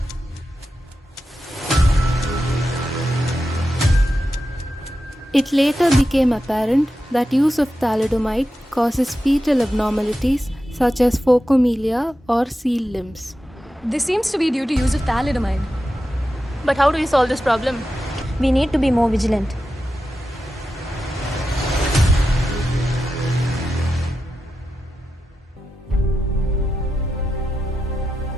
It later became apparent that use of thalidomide causes fetal abnormalities such as phocomelia or seal limbs. This seems to be due to use of thalidomide. But how do we solve this problem? We need to be more vigilant.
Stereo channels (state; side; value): normal; both; correlation 0.90